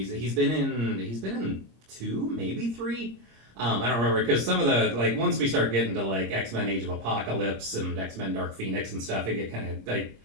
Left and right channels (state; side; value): late; left; 26 ms